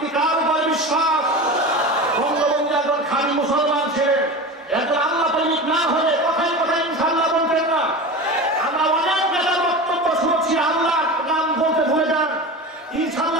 কার উপর বিশ্বাস? বঙ্গবন্ধু একজন খাঁটি মুসলমান ছিলেন, একজন আল্লাহ প্রেমিক না হলে কথায় কথায় ইনশাআল্লাহ বলতেন না। আমরা অনেক নেতার বক্তব্য শুনেছি, আল্লাহ নাম বলতে ভুলে যান,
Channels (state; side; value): normal; both; correlation 0.29